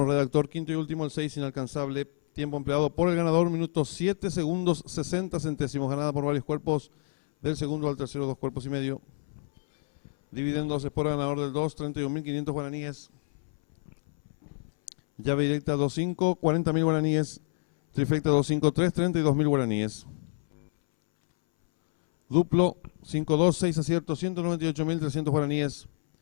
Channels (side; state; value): right; silent; 59 dB below the other